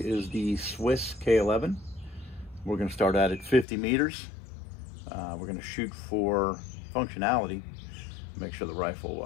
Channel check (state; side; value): drops out; right; at 3.7 s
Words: the Swiss K11. We're going to start out at 50 meters. We're going to shoot for functionality, make sure the